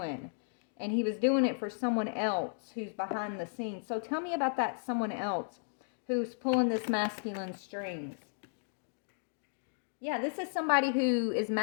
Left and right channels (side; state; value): right; silent; digital silence